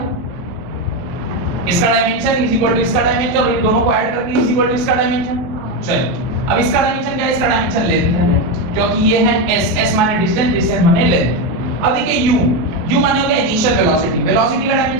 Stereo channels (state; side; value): late; left; 23 ms